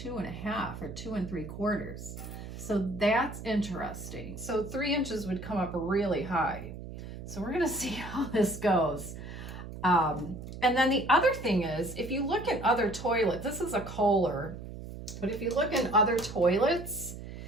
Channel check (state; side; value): noise; right; hum, 11 dB below the sound